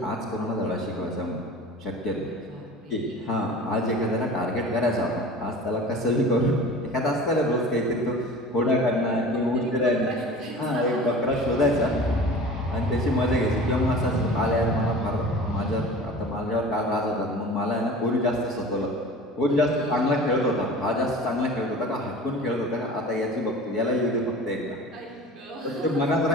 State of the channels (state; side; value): normal; both; correlation 0.39